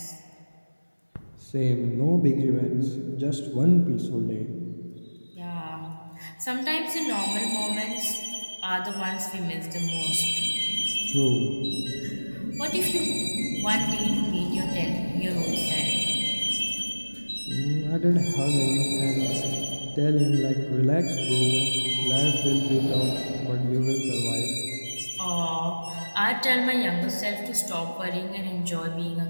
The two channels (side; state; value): both; inverted; correlation -1.00